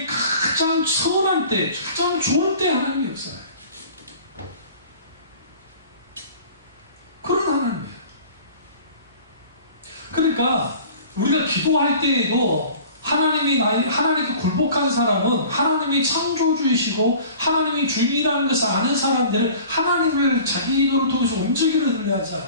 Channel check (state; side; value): inverted; both; correlation -0.45